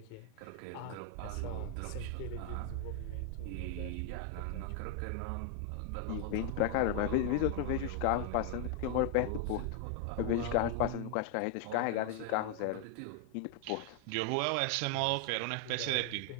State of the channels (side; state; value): both; different; correlation 0.00